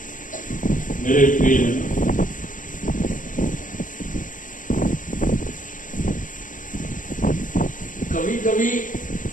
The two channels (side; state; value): right; late; 0.38 ms